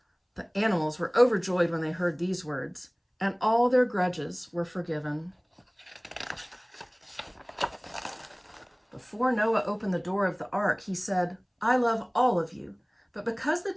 The animals were overjoyed when they heard these words, and all their grudges were forgiven. Before Noah opened the door of the ark, he said, I love all of you, but because the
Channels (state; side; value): identical; both; correlation 1.00